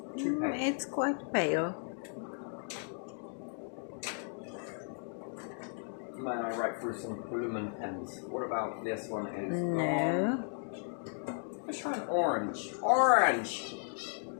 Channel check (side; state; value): right; silent; 54 dB below the other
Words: too pale? It's quite pale. May I write through some lumen pens? What about this one? Is No. let's try an orange. Orange!